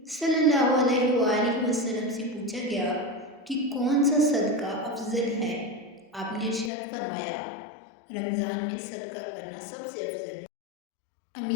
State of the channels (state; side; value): drops out; right; at 6.7 s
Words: صلی اللہ علیہ وآلہ وسلم سے پوچھا گیا کہ کون سا صدقہ افضل ہے؟ آپ نے ارشاد فرمایا، رمضان میں صدقہ کرنا سب سے افضل ہے۔